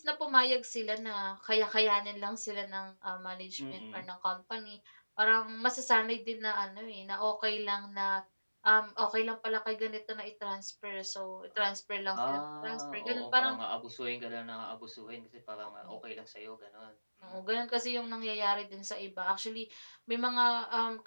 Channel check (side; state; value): both; inverted; correlation -1.00